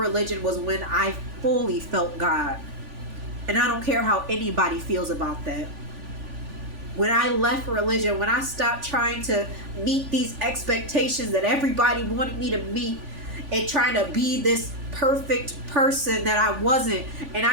was when I fully felt God. And I don't care how anybody feels about that. When I left religion, when I stopped trying to meet these expectations that everybody wanted me to meet, and trying to be this perfect person that I wasn't, and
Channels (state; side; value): late; left; 3.5 ms